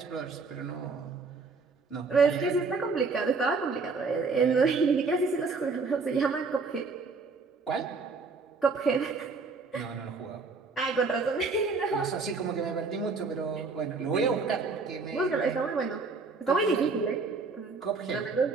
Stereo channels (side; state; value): left; quieter; 4.3 dB